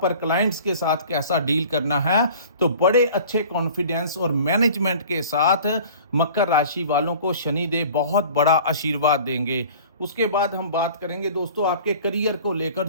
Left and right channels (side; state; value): both; inverted; correlation -0.45